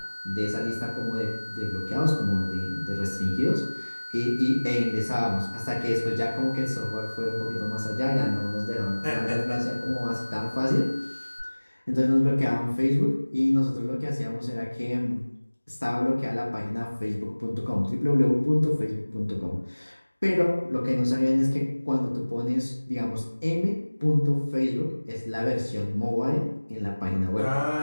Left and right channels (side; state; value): both; inverted; correlation -1.00